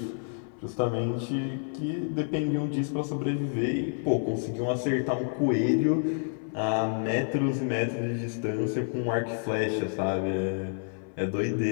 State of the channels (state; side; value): silent; right; 59 dB below the other